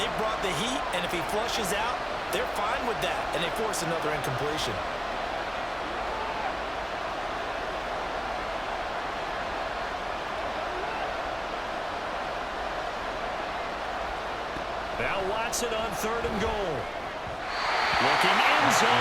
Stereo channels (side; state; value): both; identical; correlation 1.00